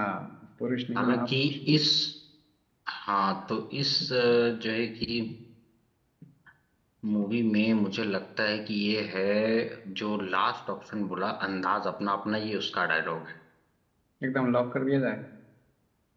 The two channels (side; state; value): both; identical; correlation 1.00